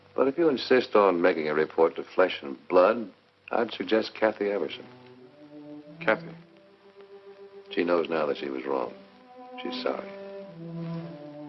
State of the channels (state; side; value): identical; both; correlation 1.00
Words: But if you insist on making a report to Flesh and Blood, I'd suggest Kathy Everson. Kathy? She knows now that she was wrong. She's sorry.